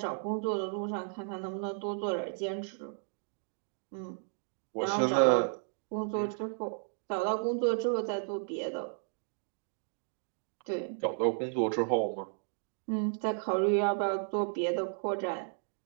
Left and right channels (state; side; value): silent; left; digital silence